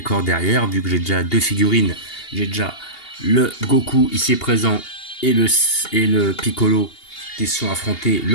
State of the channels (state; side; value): late; right; 2.8 ms